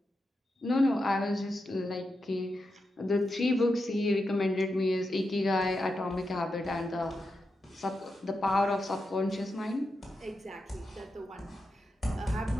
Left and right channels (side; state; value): both; normal; correlation 0.87